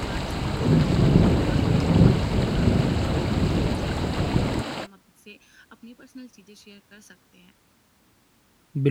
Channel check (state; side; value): identical; both; correlation 1.00